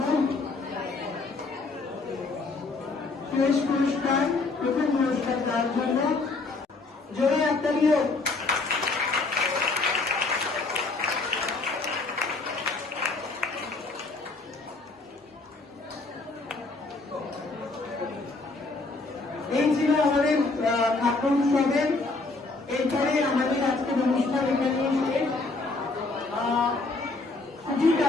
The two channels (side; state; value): right; quieter; 3.6 dB